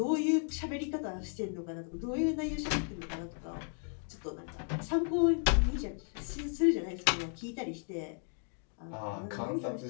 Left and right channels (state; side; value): silent; right; 55 dB below the other